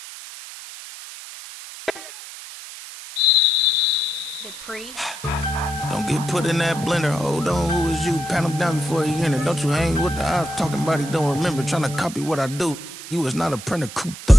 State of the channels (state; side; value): noise; right; hiss, 13 dB below the sound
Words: Don't get put in that blender. Hold on, who is you? Pat him down before he enter. Don't you hang with the ops talking about he don't remember. Trying to copy what I do. You is not a printer. Cooped up,